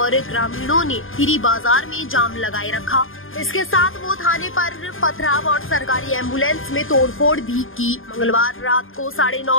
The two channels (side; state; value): right; late; 0.59 ms